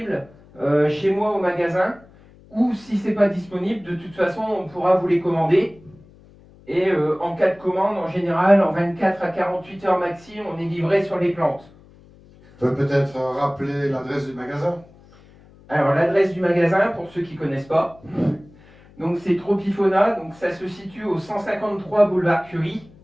chez moi au magasin. Ou si ce n'est pas disponible, de toute façon, on pourra vous les commander. Et en cas de commande, en général, en 24 à 48 heures maxi, on est livré sur les plantes. Tu peux peut-être rappeler l'adresse du magasin? Alors l'adresse du magasin, pour ceux qui ne connaissent pas, donc c'est Tropifona, donc ça se situe au 153 boulevard Curie,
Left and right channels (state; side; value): noise; left; hum, 25 dB below the sound